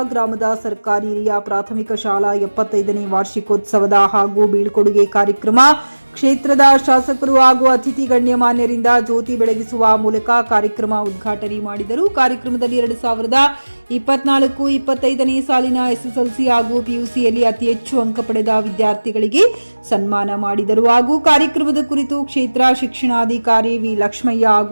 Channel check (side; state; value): both; inverted; correlation -1.00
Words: ಗ್ರಾಮದ ಸರ್ಕಾರಿ ಹಿರಿಯ ಪ್ರಾಥಮಿಕ ಶಾಲಾ 75ನೇ ವಾರ್ಷಿಕೋತ್ಸವದ ಹಾಗೂ ಬೀಳ್ಕೊಡುಗೆ ಕಾರ್ಯಕ್ರಮ ಕ್ಷೇತ್ರದ ಶಾಸಕರು ಹಾಗೂ ಅತಿಥಿ ಗಣ್ಯಮಾನ್ಯರಿಂದ ಜ್ಯೋತಿ ಬೆಳಗಿಸುವ ಮೂಲಕ ಕಾರ್ಯಕ್ರಮ ಉದ್ಘಾಟನೆ ಮಾಡಿದರು. ಕಾರ್ಯಕ್ರಮದಲ್ಲಿ 2024-25ನೇ ಸಾಲಿನ ಎಸ್ಎಸ್ಎಲ್ಸಿ ಹಾಗೂ ಪಿಯುಸಿಯಲ್ಲಿ ಅತಿ ಹೆಚ್ಚು ಅಂಕ ಪಡೆದ ವಿದ್ಯಾರ್ಥಿಗಳಿಗೆ ಸನ್ಮಾನ ಮಾಡಿದರು. ಹಾಗೂ ಕಾರ್ಯಕ್ರಮದ ಕುರಿತು ಕ್ಷೇತ್ರ ಶಿಕ್ಷಣಾಧಿಕಾರಿ ವಿ ಲಕ್ಷ್ಮಯ್ಯ